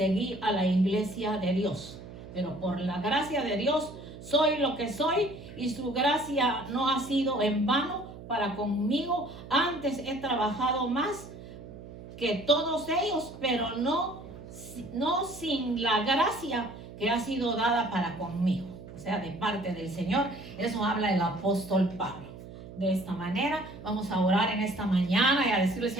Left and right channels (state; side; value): noise; right; hum, 14 dB below the sound